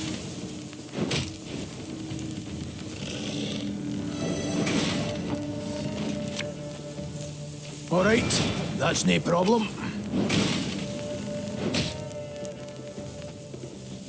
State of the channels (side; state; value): both; identical; correlation 1.00